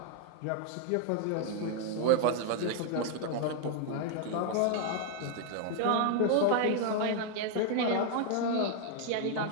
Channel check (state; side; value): different; both; correlation 0.00